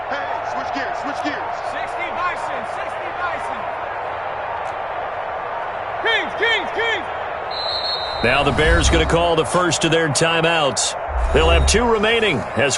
Now the Bears going to call the first of their timeouts. They'll have 2 remaining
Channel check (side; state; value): both; identical; correlation 1.00